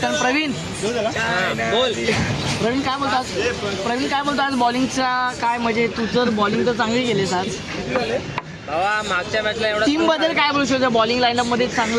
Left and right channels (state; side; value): identical; both; correlation 1.00